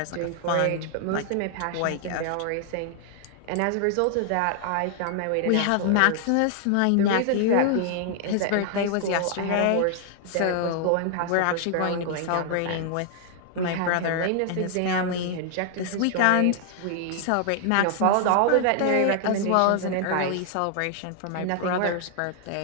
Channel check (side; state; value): both; different; correlation 0.00